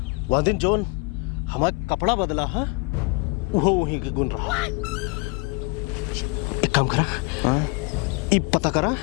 वह दिन जोन हमारा कपड़ा बदला है वो वहीं के गुण रहा। एक काम करा, ये पता करा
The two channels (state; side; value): quieter; right; 29.2 dB